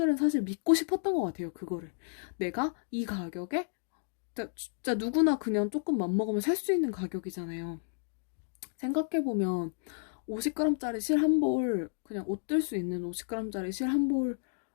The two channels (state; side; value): silent; right; digital silence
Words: 사실 믿고 싶었던 것 같아요. 그거를. 내가 이 가격에 진짜 누구나 그냥 조금 맘먹으면 살 수 있는 가격이잖아요. 생각해보면 50g짜리 실 한 볼, 그냥 옷 뜰 수 있는 50g짜리 실 한